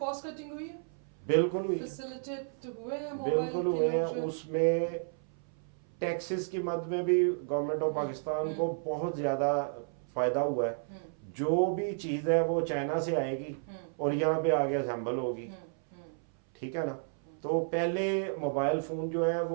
कटिंग हुई है, बिल्कुल हुई है, फैसिलिटेट हुए हैं मोबाइल बिल्कुल के हुए हैं। लोग जो हैं? उसमें टैक्सेस की मद में भी गवर्नमेंट ऑफ पाकिस्तान को बहुत ज़्यादा फ़ायदा हुआ है। जो भी चीज़ है वो चाइना से आएगी और यहाँ पे आगे असेंबल होगी, ठीक है ना। तो पहले मोबाइल फ़ोन जो है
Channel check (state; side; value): silent; left; 56 dB below the other